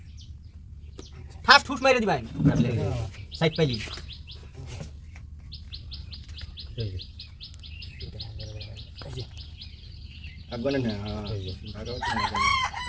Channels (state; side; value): identical; both; correlation 1.00